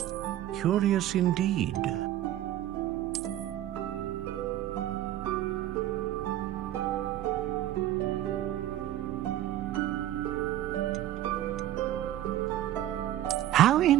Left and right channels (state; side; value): quieter; left; 13.0 dB